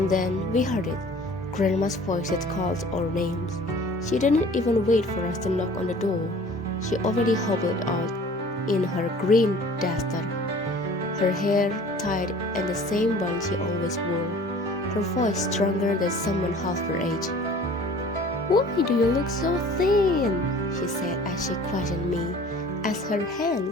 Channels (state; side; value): normal; both; correlation 0.48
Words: then we heard it, Grandma's voice that called our names. She didn't even wait for us to knock on the door. She already hobbled out in her green duster, her hair tied in the same bun she always wore, her voice stronger than someone half her age. "Why do you look so thin?" she said as she questioned me, as her